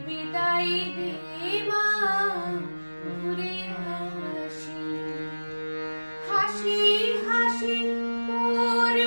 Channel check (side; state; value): both; inverted; correlation -1.00